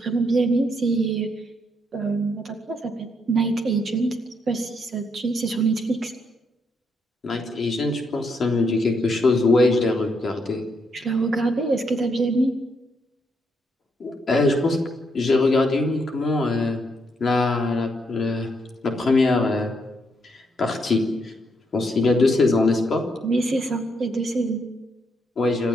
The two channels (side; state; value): both; normal; correlation 0.76